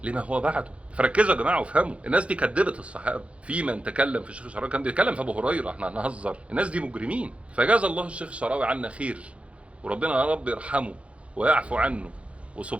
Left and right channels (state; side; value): late; left; 0.062 ms